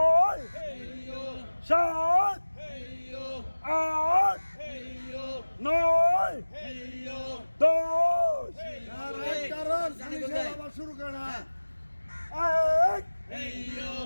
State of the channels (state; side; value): inverted; both; correlation -1.00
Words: সাত আট নয় দশ। আবার শুরু করে না। এক দুই